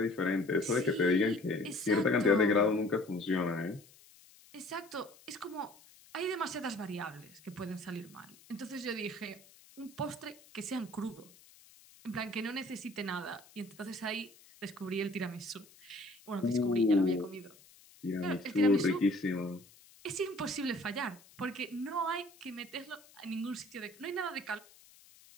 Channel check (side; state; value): left; noise; hiss, 24 dB below the sound